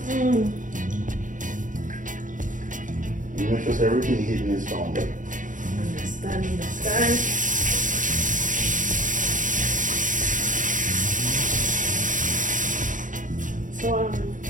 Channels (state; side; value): late; left; 0.38 ms